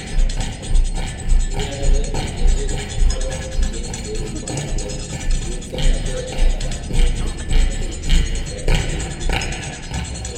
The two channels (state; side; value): identical; both; correlation 1.00